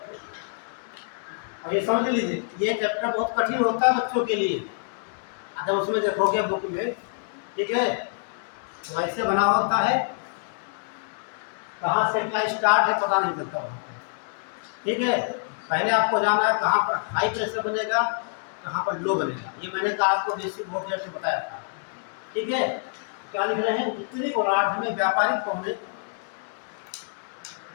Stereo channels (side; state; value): right; silent; digital silence